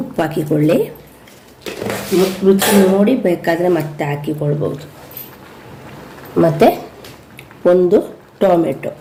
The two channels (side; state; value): both; identical; correlation 1.00